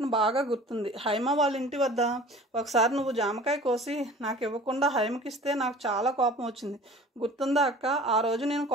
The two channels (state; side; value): normal; both; correlation 0.44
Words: బాగా గుర్తుంది. హైమ వాళ్ళ ఇంటి వద్ద ఒకసారి నువ్వు జామకాయ కోసి నాకు ఇవ్వకుండా హైమకిస్తే నాకు చాలా కోపం వచ్చింది. గుర్తుందా అక్క? ఆ రోజు నేను